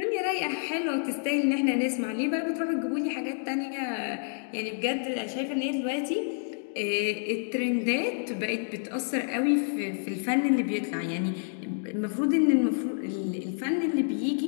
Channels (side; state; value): right; silent; digital silence